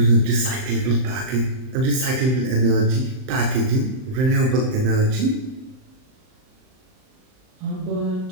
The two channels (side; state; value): left; late; 39 ms